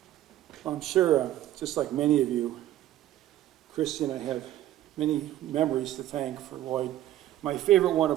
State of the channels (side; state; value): left; quieter; 13.5 dB